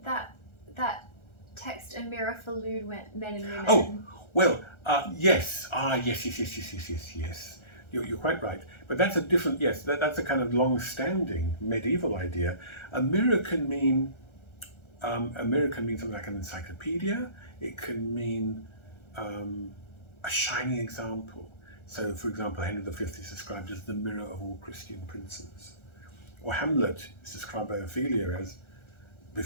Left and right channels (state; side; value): late; right; 1.4 ms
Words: that text, a mirror for lewd men and women. Oh, well, yes. Yes. You're quite right. But that's a different, that's a kind of long-standing medieval idea. A mirror can mean A mirror can mean something like an encyclopedia. It can mean a shining example. So, for example, Henry V is described as the mirror of all Christian princes. Or Hamlet is described by Ophelia as,